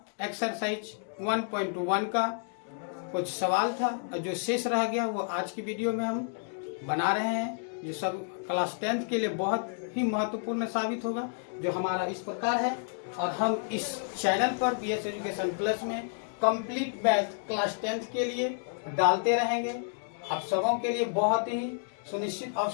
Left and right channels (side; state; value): right; silent; digital silence